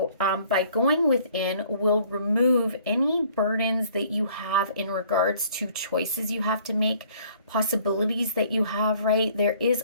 by going within, will remove any burdens that you have in regards to choices you have to make, possibilities that you have, right? There is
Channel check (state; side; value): inverted; both; correlation -0.57